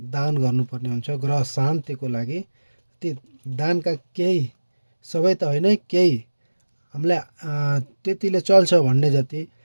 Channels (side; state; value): both; inverted; correlation -1.00